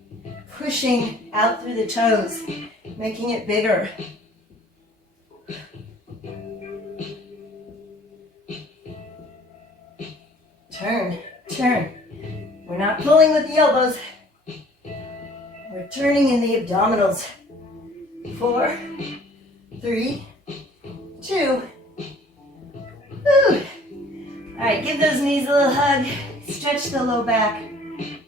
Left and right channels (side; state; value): both; normal; correlation 0.53